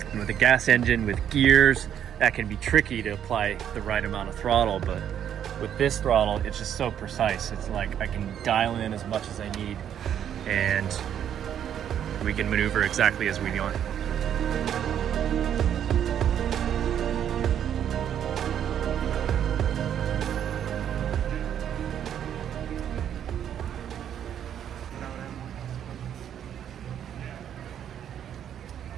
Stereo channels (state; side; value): quieter; left; 9.6 dB